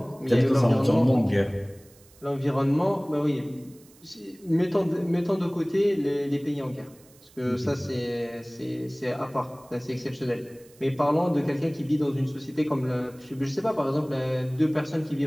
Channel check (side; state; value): right; noise; hiss, 27 dB below the sound